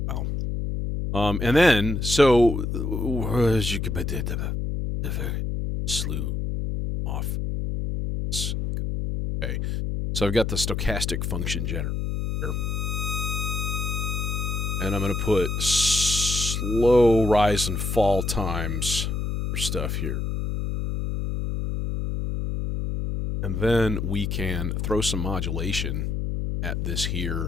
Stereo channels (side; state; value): left; noise; hum, 1 dB below the sound